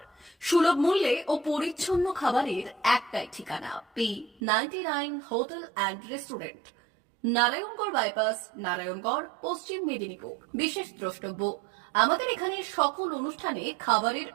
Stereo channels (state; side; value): drops out; left; at 4.4 s